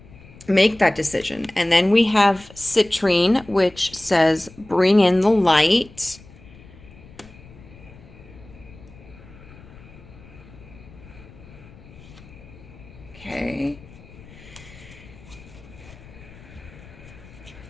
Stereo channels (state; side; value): noise; left; rumble, 21 dB below the sound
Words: make that decision. And then we have citrine, which says bring in the light. Okay.